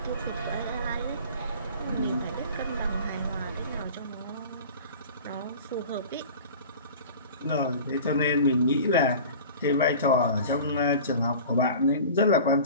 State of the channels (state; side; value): inverted; both; correlation -0.40